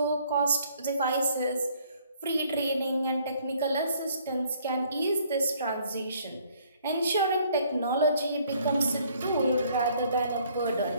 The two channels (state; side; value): inverted; both; correlation -0.62